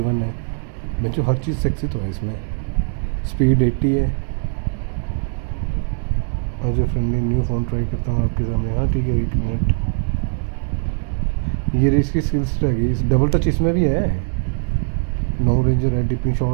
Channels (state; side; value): silent; left; 63 dB below the other